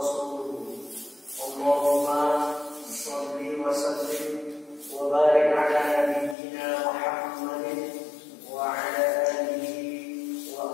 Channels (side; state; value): right; drops out; at 6.4 s